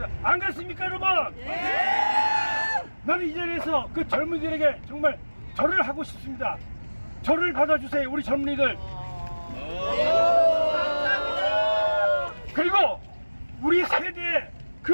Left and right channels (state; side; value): inverted; both; correlation -1.00